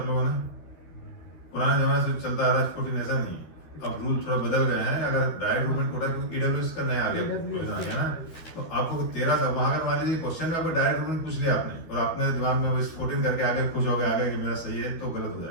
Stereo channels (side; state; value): right; late; 12 ms